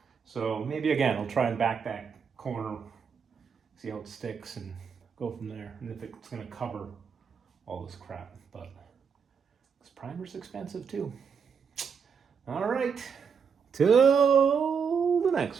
So maybe again, I'll try and back that corner, see how it sticks and go from there. And if it's gonna cover all this crap, but this primer's expensive too. All right, till the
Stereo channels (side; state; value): left; quieter; 6.4 dB